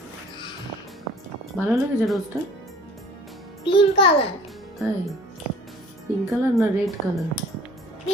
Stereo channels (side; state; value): both; normal; correlation 0.49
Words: ভালো লেগেছে রোজটা? Pink colour. তাই? পিঙ্ক কালার না রেড কালার?